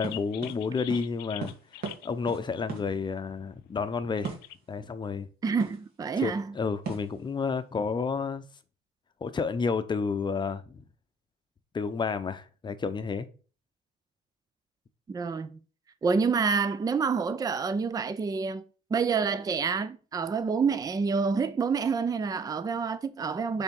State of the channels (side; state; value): both; normal; correlation 0.57